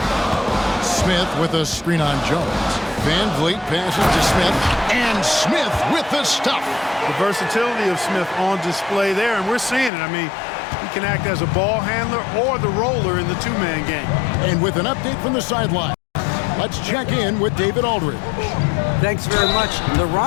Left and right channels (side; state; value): right; drops out; at 9.9 s